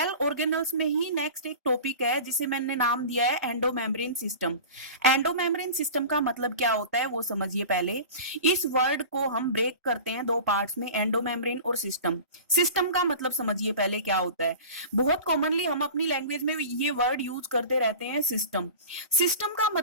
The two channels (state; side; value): inverted; both; correlation -0.36